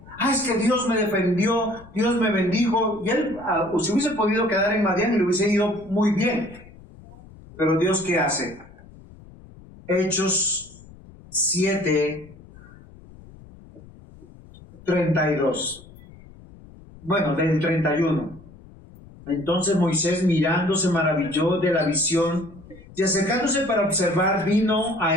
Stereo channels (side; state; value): left; noise; rumble, 21 dB below the sound